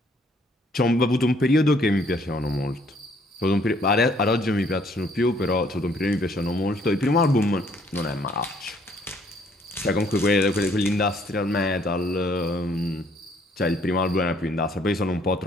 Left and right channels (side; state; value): both; normal; correlation 0.64